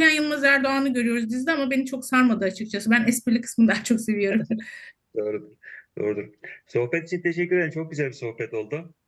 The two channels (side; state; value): both; identical; correlation 1.00